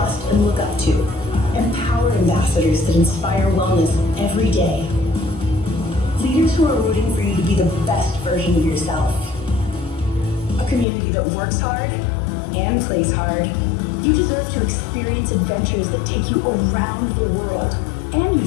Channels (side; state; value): right; drops out; at 10.9 s